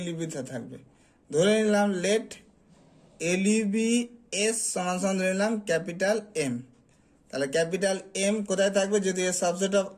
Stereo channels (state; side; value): identical; both; correlation 1.00